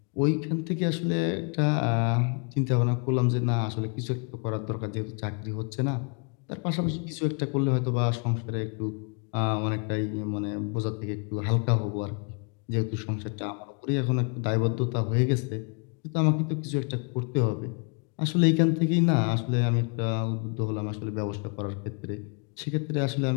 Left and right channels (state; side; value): quieter; right; 38.4 dB